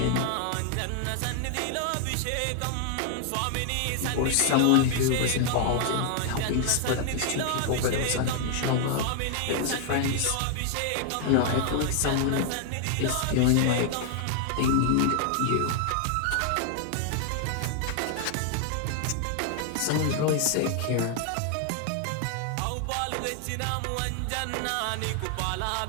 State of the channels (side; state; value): both; different; correlation 0.00